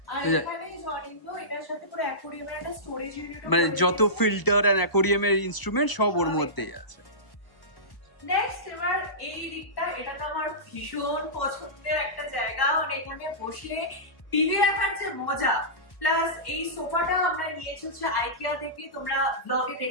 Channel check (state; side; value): late; right; 1.0 ms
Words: মানে যত ফিল্টার আর অ্যাকোয়ারিয়ামের ইনস্ট্রুমেন্ট সব ওর মধ্যেই আছে। নেক্সট এবার এই দিকটা, এটা তো আমার ভীষণ পছন্দের একটা জায়গা, মানে এখানে বসে টিভি দেখার যে মজা, প্লাস এই সোফাটা আমরা নিয়েছি হচ্ছে আইকিয়া থেকে। তোমরা ব্লগে